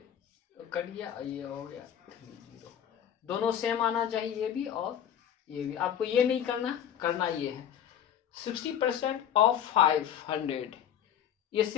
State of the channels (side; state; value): right; quieter; 9.6 dB